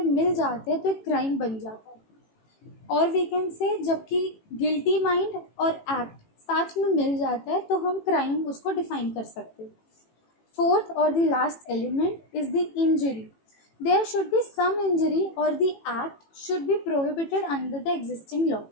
मिल जाते हैं तो एक क्राइम बन जाता है। और वी कैन से जबकि गिल्टी माइंड और एक्ट साथ में मिल जाता है तो हम क्राइम उसको डिफाइन कर सकते हैं। फोर्थ और the last element is the injury. There should be some injury or the act should be prohibited under the existing law.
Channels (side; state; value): right; late; 18 ms